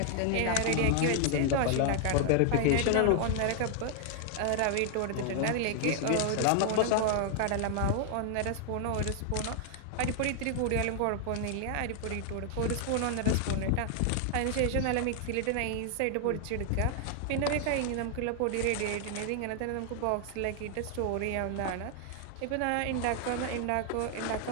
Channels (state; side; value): different; both; correlation 0.00